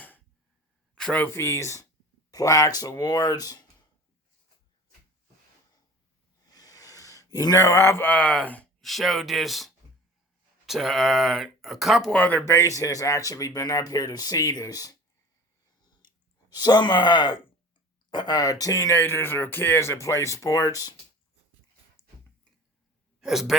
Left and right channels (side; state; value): both; normal; correlation 0.41